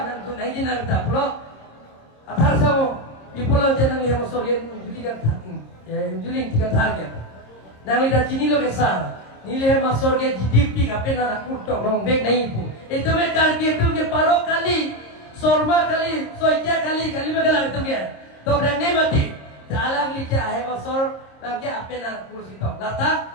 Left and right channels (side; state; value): right; late; 26 ms